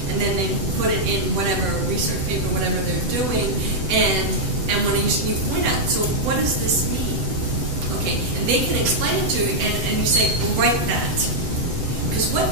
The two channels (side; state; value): left; late; 8.0 ms